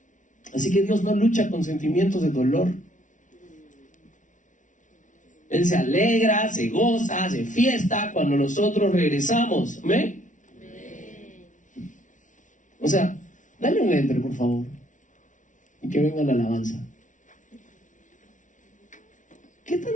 Así que Dios no lucha con sentimientos de dolor. Él se alegra, se goza, se fiesta cuando nosotros regresamos. ¿Amén? O sea, dale un enter, por favor, y que venga la alabanza. ¿Qué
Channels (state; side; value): late; right; 0.37 ms